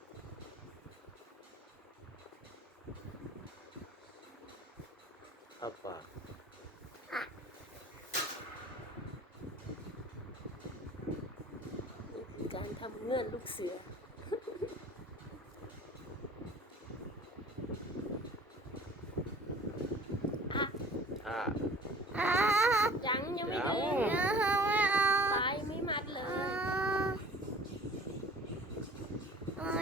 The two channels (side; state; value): both; normal; correlation 0.47